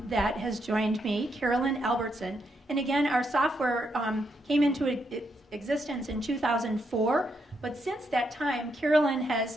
has joined me, Carolyn Albertson. And again, our software came into existence in 2004. But since that time, Carolyn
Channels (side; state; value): both; normal; correlation 0.79